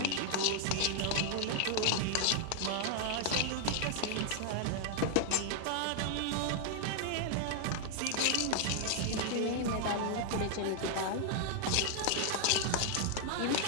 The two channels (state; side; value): different; both; correlation 0.00